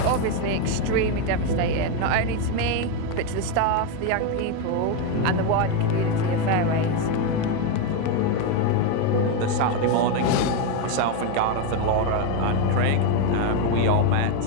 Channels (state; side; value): different; both; correlation 0.03